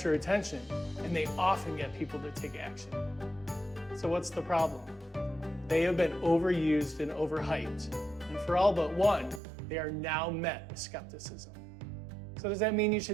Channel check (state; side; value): drops out; left; at 9.4 s